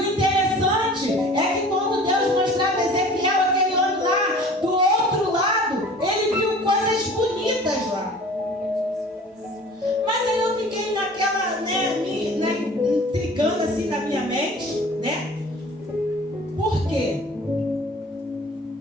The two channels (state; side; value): normal; both; correlation 0.45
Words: interessante é que quando Deus mostrava a Ezequiel aquele homem lá, do outro lado, ele viu coisas bonitas lá. Mas aí eu fiquei naquela, intrigando assim na minha mente, né? Por quê?